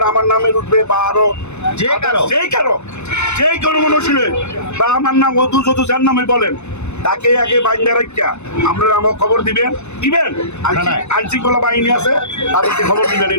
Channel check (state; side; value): late; right; 0.82 ms